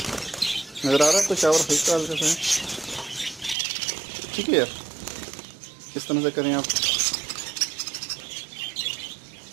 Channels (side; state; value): left; drops out; at 3.6 s